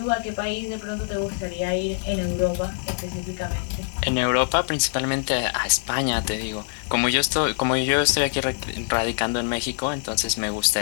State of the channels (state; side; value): silent; right; 59 dB below the other